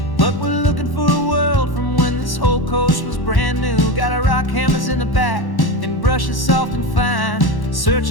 but we're looking for a world from when this whole coast was brand new. Got our rock hammers in the back and brushes soft and fine,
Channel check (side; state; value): right; late; 1.1 ms